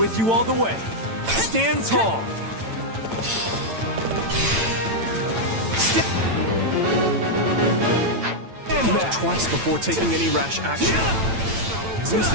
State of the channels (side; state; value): left; late; 9.0 ms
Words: you all the way. Stand tall. Think twice before taking any rash action. There's